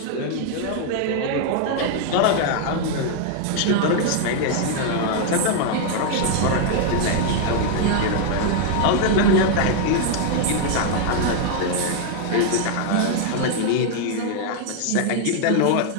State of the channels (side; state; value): both; different; correlation 0.00